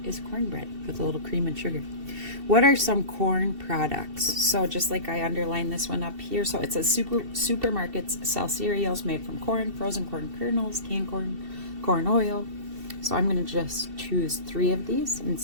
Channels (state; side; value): late; left; 2.7 ms